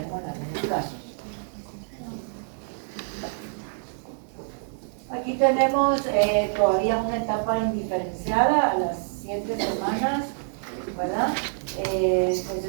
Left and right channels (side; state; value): left; silent; digital silence